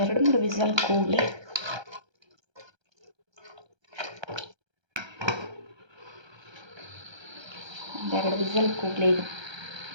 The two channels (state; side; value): late; left; 1.3 ms